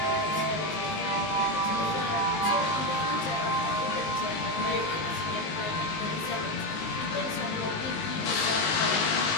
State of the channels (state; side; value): late; right; 19 ms